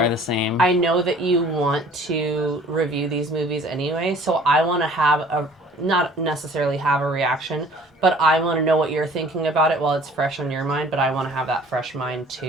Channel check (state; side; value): normal; both; correlation 0.51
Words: the same. I know that you want to review these movies anyway, so I want to not necessarily have a reaction, but I want to know what you're thinking about it while it's fresh on your mind, but I want to have that fresh mind